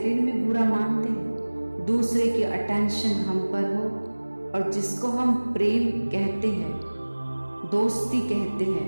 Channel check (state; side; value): inverted; both; correlation -1.00